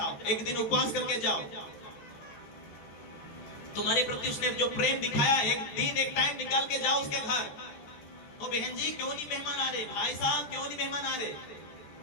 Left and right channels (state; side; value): late; right; 14 ms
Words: एक दिन उपवास करके जाओ। तुम्हारे प्रति उसने जो प्रेम दिखाया, एक दिन एक टाइम निकाल के जाओ उसके घर। ओ बहन जी क्यों नहीं मेहमान आ रहे, भाई साहब क्यों नहीं मेहमान आ रहे?